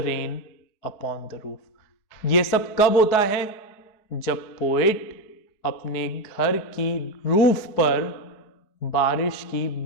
rain upon the roof. ये सब कब होता है, जब पोएट अपने घर की रूफ पर बारिश की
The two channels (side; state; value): right; late; 4.7 ms